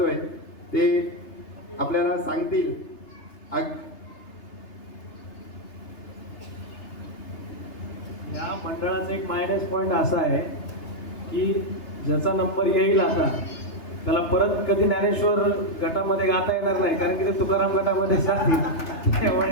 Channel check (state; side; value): late; right; 3.3 ms